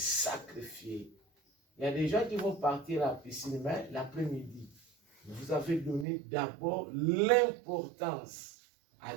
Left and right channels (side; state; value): left; drops out; at 6.1 s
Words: Il y a des gens qui vont partir à la piscine, mais l'après-midi. Vous avez donné d'abord l'importance à